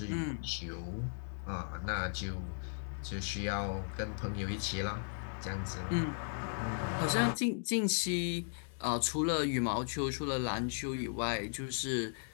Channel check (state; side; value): silent; right; digital silence